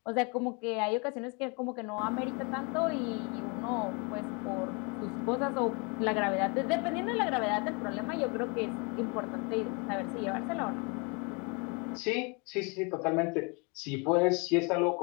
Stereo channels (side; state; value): right; quieter; 32.1 dB